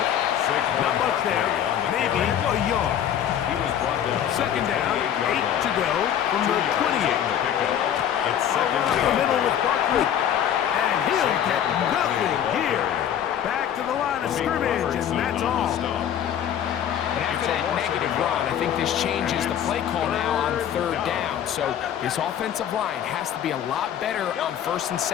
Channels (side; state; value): right; quieter; 9.8 dB